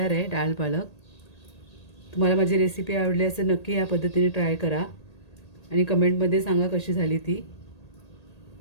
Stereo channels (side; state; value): right; late; 1.8 ms